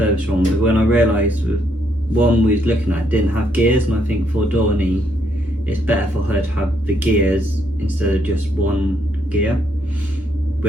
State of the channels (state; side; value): normal; both; correlation 0.73